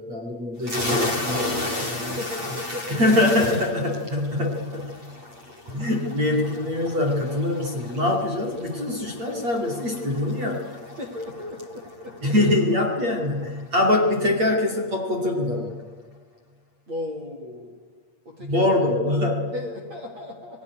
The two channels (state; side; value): late; left; 8.6 ms